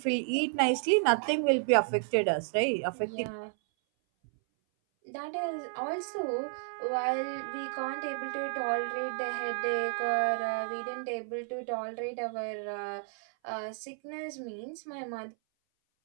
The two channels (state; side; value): silent; left; 56 dB below the other